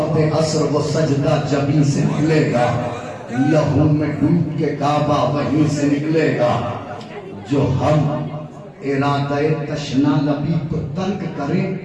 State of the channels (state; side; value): identical; both; correlation 1.00